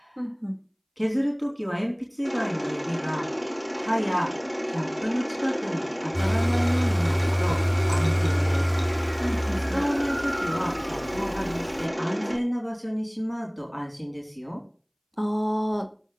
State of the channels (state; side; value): identical; both; correlation 1.00